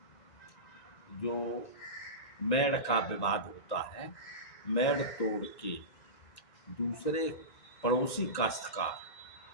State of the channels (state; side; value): late; right; 1.9 ms